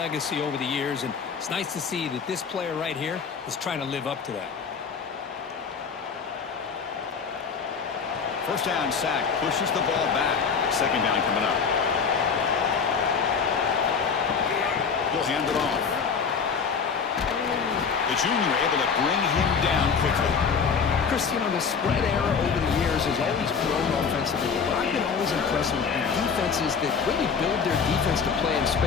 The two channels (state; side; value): quieter; right; 5.9 dB